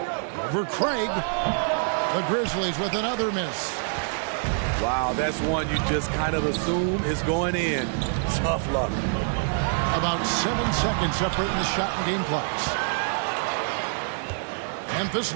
Over Craig. The Grizzlies with another miss. Wow, that's one you just kind of assume is going in. Tough luck. About 7 seconds separating the shot and game clocks. Memphis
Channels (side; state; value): left; silent; 61 dB below the other